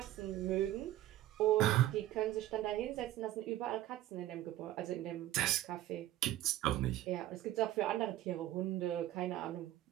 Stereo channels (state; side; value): quieter; left; 14.2 dB